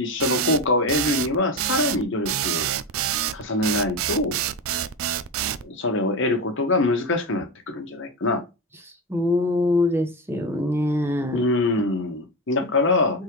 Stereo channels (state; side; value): normal; both; correlation 0.18